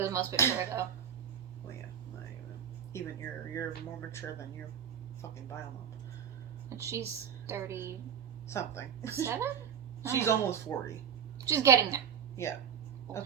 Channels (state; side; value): quieter; left; 8.3 dB